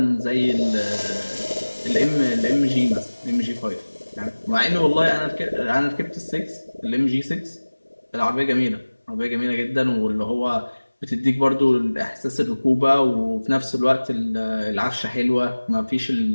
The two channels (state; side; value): inverted; both; correlation -1.00